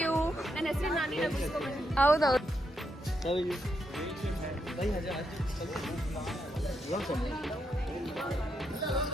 you. ನನ್ನ ಹೆಸರು ನಾನಿನ ಬಿಸ್ಕೊಂಡು. ಹೌದೌದು.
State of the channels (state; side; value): normal; both; correlation 0.81